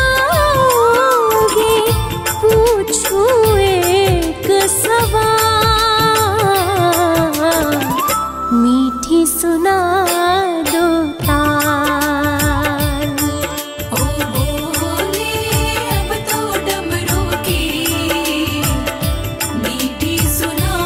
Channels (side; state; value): both; identical; correlation 1.00